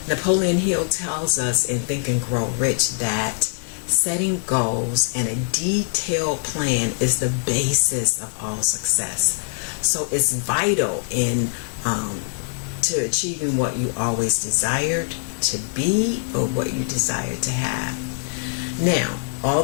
Napoleon Hill tells us in Think and Grow Rich that setting goals and a detailed plan is the basis of all success. So it's vital in to achieving what you always desired to be or what you desire to have. Now,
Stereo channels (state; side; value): silent; right; 64 dB below the other